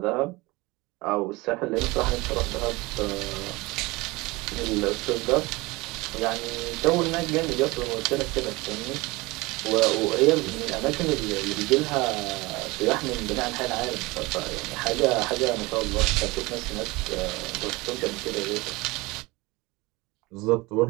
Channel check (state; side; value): quieter; left; 22.7 dB